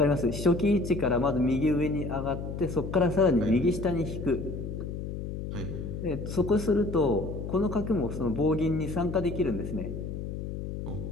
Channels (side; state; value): left; noise; hum, 6 dB below the sound